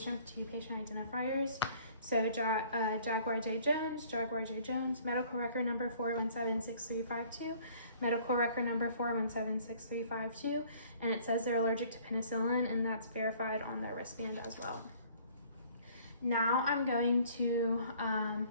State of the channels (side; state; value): both; inverted; correlation -0.55